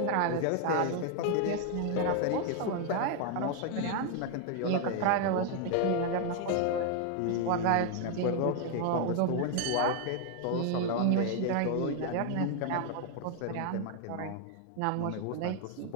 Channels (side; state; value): both; different; correlation 0.00